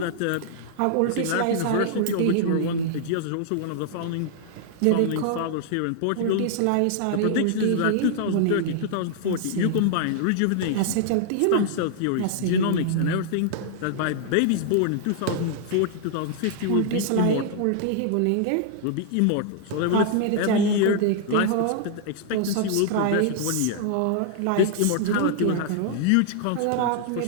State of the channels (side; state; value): both; different; correlation -0.01